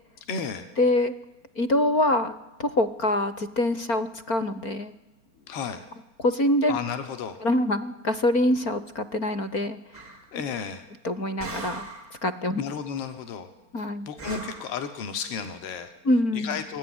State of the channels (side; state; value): right; late; 4.4 ms